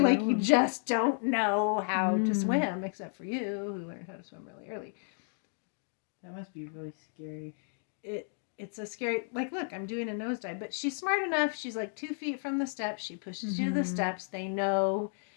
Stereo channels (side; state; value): right; silent; 56 dB below the other